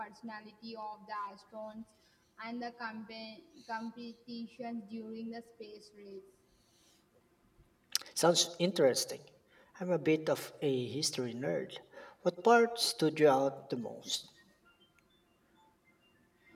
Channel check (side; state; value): both; identical; correlation 1.00